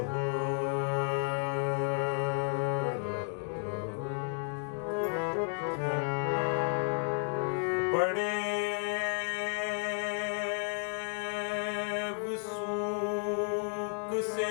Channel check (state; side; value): silent; right; 56 dB below the other